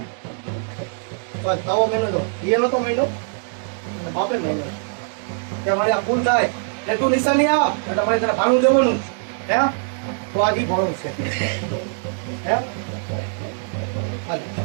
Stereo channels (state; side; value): silent; left; digital silence